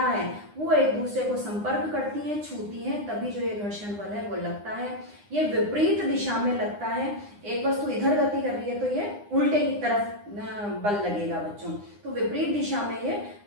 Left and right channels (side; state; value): left; late; 9.8 ms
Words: है वो एक दूसरे को संपर्क करती हैं, छूती हैं, तभी जो ये घर्षण बल है वो लगता है। ये विपरीत दिशा में लगता है। एक वस्तु इधर गति कर रही है तो ये उल्टे की तरफ बल लगेगा बच्चों। तो विपरीत दिशा में ये